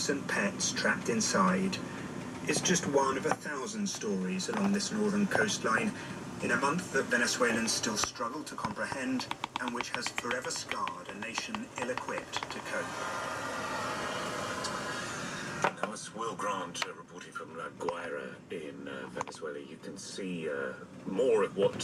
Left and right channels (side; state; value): both; identical; correlation 1.00